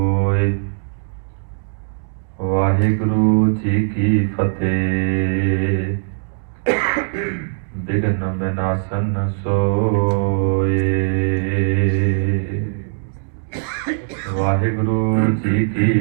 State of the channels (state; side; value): silent; left; digital silence